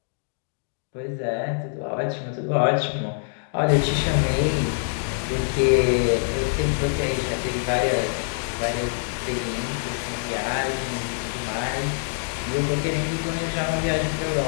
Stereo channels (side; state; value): right; silent; digital silence